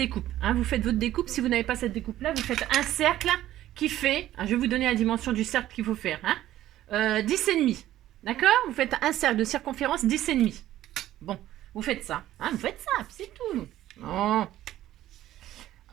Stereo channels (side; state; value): left; quieter; 13.6 dB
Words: Hein. Vous faites votre découpe. Si vous n'avez pas cette découpe-là, vous faites un cercle qui fait... Hein, je vais vous donner la dimension du cercle qu'il faut faire. Hein, 10,5. D'accord? Vous faites un cercle de circonférence 10,5. Bon, vous faites ça. Hein, vous faites ça, c'est tout. Oh.